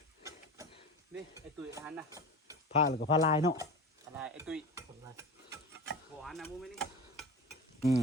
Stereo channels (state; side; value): normal; both; correlation 0.31